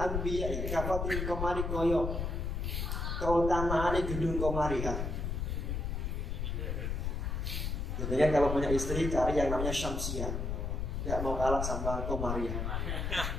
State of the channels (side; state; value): left; noise; rumble, 2 dB below the sound